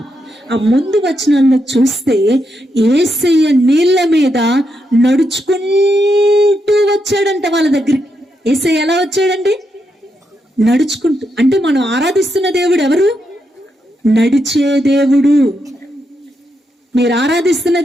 ఆ ముందు వచనాల్లో చూస్తే యేసయ్య నీళ్ల మీద నడుచుకుంటూ వచ్చాడంట వాళ్ళ దగ్గరికి. యేసయ్య ఎలా వచ్చాడండి? నడుచుకుంటూ. అంటే మనం ఆరాధిస్తున్న దేవుడు ఎవరు? నడిచే దేవుడు. మీరు ఆరాధిస్తున్న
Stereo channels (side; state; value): both; normal; correlation 0.82